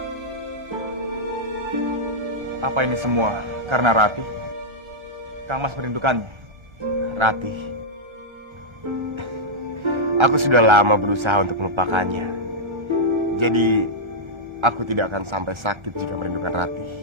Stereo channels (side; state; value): left; late; 1.3 ms